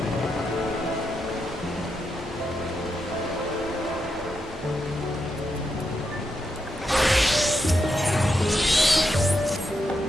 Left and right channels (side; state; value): both; normal; correlation 0.84